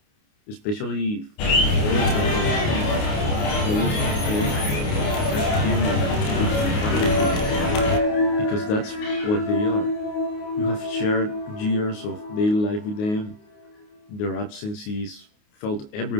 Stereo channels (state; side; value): late; right; 29 ms